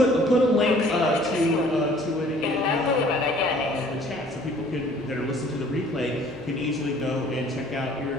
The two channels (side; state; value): both; normal; correlation 0.55